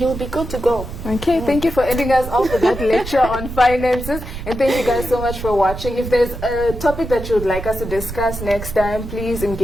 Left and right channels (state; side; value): noise; right; rumble, 9 dB below the sound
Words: you'll be good to go. Okay, thank you for ending us off with that lecture on finances, and thank you guys so much for watching. If there's a topic that you would like us to discuss next time, please